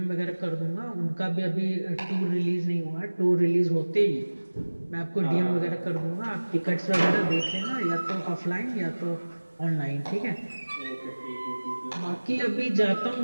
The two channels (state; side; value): inverted; both; correlation -1.00